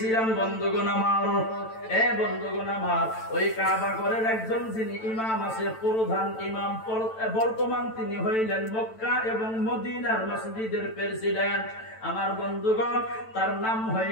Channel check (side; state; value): right; late; 9.0 ms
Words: বন্ধুগণ আমার। এ বন্ধুগণ আমার, ওই কাবা ঘরের একজন যিনি ইমাম আছে, প্রধান ইমাম, বর্তমান তিনি হইলেন মক্কা এবং মদিনার মসজিদের প্রেসিডেন্ট। আমার বন্ধুগণ তার নাম